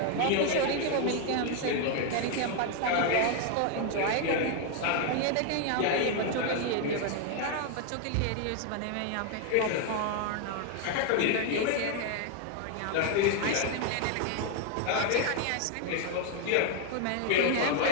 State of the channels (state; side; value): different; both; correlation 0.01